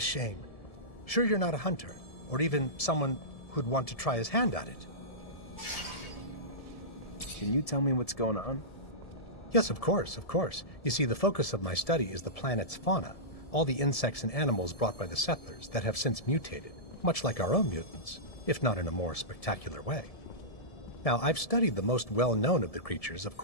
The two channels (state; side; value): late; right; 1.7 ms